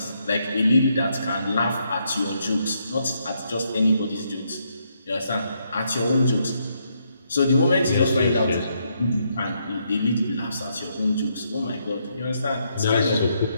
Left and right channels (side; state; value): both; inverted; correlation -0.76